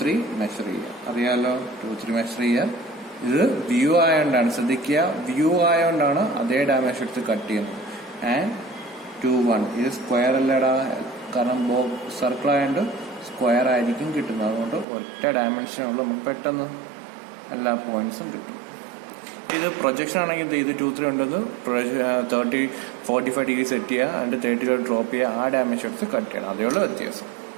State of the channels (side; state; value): left; drops out; at 14.9 s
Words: മെഷർ ചെയ്യുക. അറിയാലോ, 2, 3 മെഷർ ചെയ്യുക. ഇത് വ്യൂ ആയതുകൊണ്ടാണ്, ശ്രദ്ധിക്കുക, വ്യൂ ആയതുകൊണ്ടാണ് അതേ ഡയമെൻഷൻ എടുത്ത് കട്ട് ചെയ്യുന്നത്. ആൻഡ് 2, 1 ഇത് സ്ക്വയർ അല്ലടാ, കാരണം സർക്കിൾ ആയതുകൊണ്ട് സ്ക്വയർ ആയിരിക്കും കിട്ടുന്നത്. അതുകൊണ്ട് ഒറ്റ ഡയമെൻഷനുള്ള നമുക്ക് പെട്ടെന്ന് എല്ലാ പോയിന്റ്സും കിട്ടും. ഇത് പ്രൊജക്ഷൻ ആണെങ്കിൽ ഇത് 2, 3 ഉണ്ടത് 45 ഡിഗ്രി സെറ്റ് ചെയ്യുക, അതിന്റെ 30 ഡ്രോപ്പ് ചെയ്യുക, ആ ഡയമെൻഷൻ എടുത്ത് കട്ട് ചെയ്യണം. അതേയുള്ള വ്യത്യാസം.